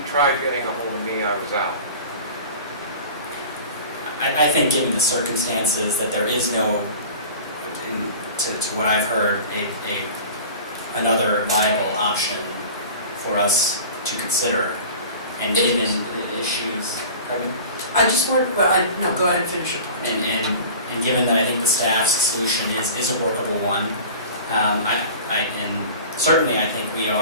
tried getting a hold of me, I was out. I think given the circumstances that there is no, to what I've heard, another viable option for us to consider, and given the issues, pardon me? I just want, well, no, go ahead and finish your point. And given that I think the staff's solution is a workable one, and certainly I think we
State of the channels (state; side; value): inverted; both; correlation -0.39